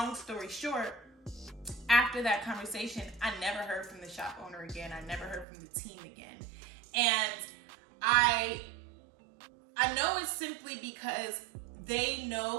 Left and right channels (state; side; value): drops out; left; at 5.5 s